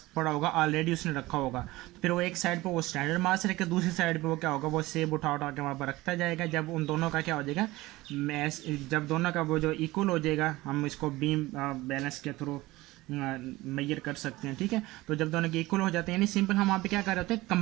पड़ा होगा, ऑलरेडी उसने रखा होगा। तो फिर वो एक साइड पे वो स्टैंडर्ड मास रखे, दूसरी साइड पे वो क्या होगा, वो सेब उठा उठा के वहाँ पर रखता जाएगा। जब उन दोनों का क्या हो जाएगा, मैस, जब दोनों का वो जो इक्वल हो जाएगा, हम इसको बीम बैलेंस के थ्रू मेजर कर सकते हैं, ठीक है। तो जब दोनों के इक्वल हो जाते हैं, यानी सिंपल हम वहाँ पे क्या कर रहे होते हैं,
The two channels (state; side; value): quieter; left; 19.3 dB